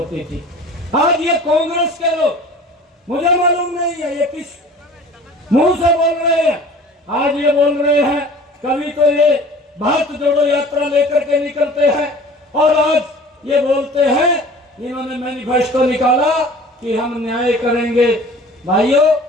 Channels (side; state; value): both; normal; correlation 0.45